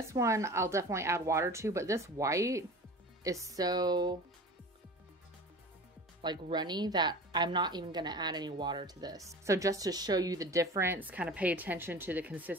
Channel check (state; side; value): normal; both; correlation 0.37